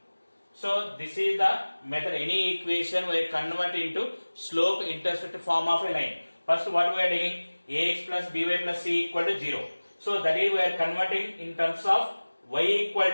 So this is the method. Any equation we convert into slope intercept form of a line. First what we are taking, ax plus by plus c equal to 0. So that is we are converting in terms of y equal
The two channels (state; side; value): inverted; both; correlation -1.00